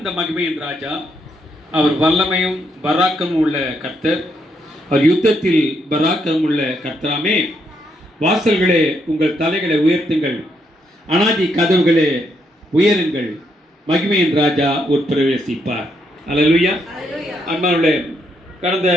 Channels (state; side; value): normal; both; correlation 0.76